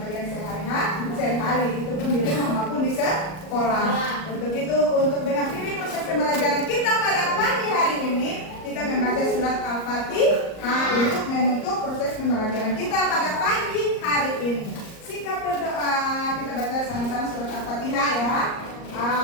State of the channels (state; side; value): late; right; 38 ms